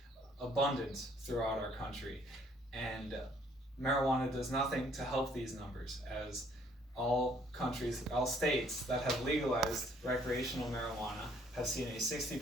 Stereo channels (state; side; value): normal; both; correlation 0.63